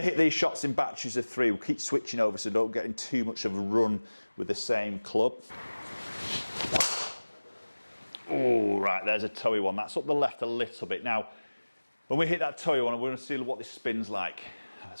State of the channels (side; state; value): both; inverted; correlation -1.00